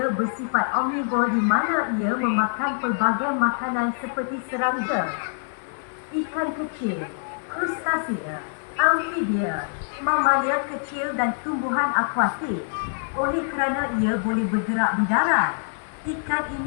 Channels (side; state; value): right; silent; digital silence